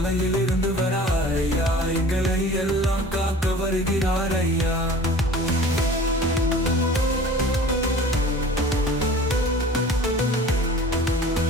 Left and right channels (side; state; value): both; normal; correlation 0.44